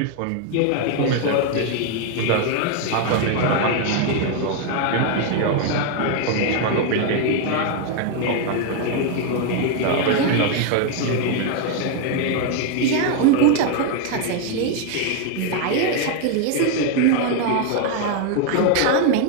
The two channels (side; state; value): both; different; correlation 0.01